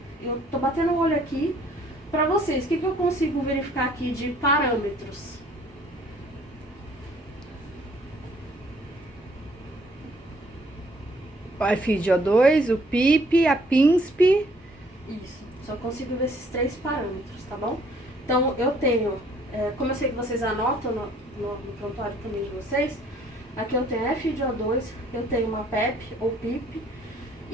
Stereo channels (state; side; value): normal; both; correlation 0.60